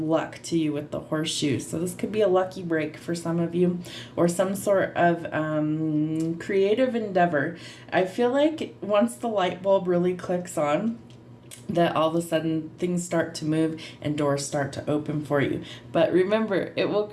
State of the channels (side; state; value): both; identical; correlation 1.00